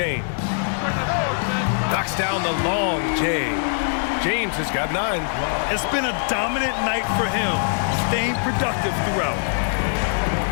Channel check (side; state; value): right; silent; digital silence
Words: Knocks down the long J. James has got 9. It's been a dominant night for him, staying productive throughout.